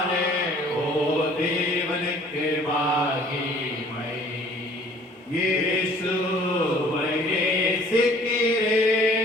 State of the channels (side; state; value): both; normal; correlation 0.54